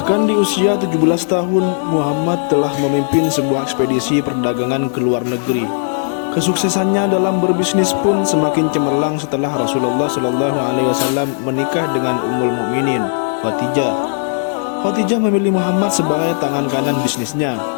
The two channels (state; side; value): silent; right; 63 dB below the other